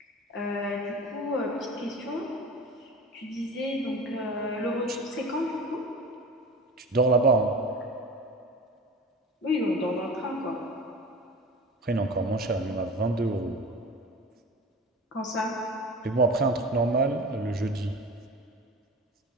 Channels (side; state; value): both; normal; correlation 0.34